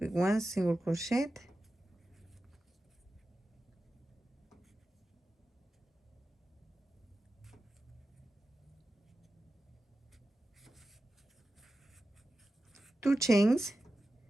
1 single crochet, 2 chains,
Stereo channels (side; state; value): both; normal; correlation 0.93